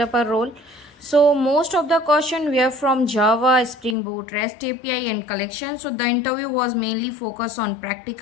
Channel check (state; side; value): drops out; right; at 4.0 s